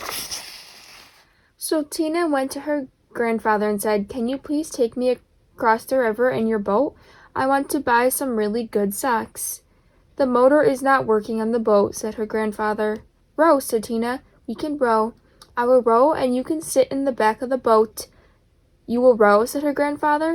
So Tina went to her grandfather and said, "Can you please take me across the river in your boat? I want to buy some really good socks." "The motor is not working on the boat," said her grandfather. "Row," said Tina. "We can row. I will row and you can sit in the back of the boat." "You will row?" said her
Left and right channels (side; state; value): both; identical; correlation 1.00